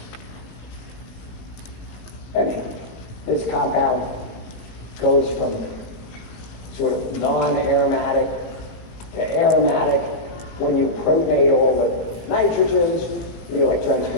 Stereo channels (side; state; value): right; late; 18 ms